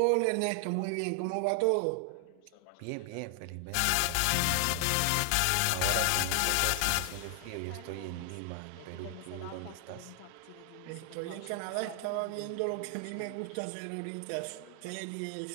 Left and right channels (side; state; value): both; different; correlation 0.00